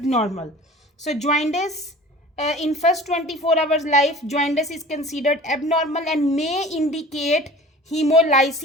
So jaundice in first 24 hours life, jaundice is considered abnormal and may indicate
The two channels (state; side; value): normal; both; correlation 0.43